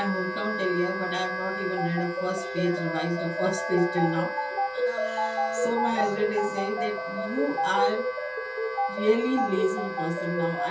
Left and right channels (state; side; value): identical; both; correlation 1.00